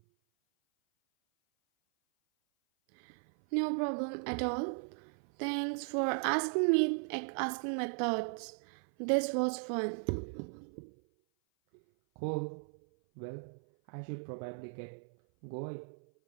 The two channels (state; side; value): silent; left; 53 dB below the other